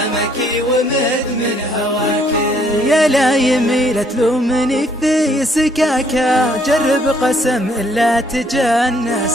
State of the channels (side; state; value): both; normal; correlation 0.67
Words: ومدمن هواك. يا لا يميل تلومني في سكاكة، جرب قسم إلا